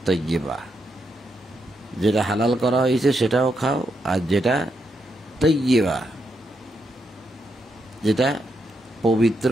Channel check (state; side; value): normal; both; correlation 0.81